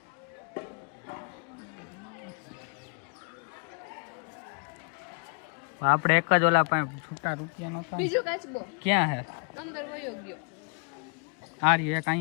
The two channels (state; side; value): quieter; right; 35.0 dB